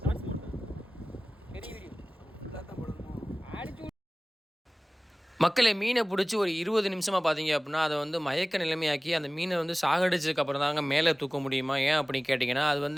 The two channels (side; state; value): both; normal; correlation 0.98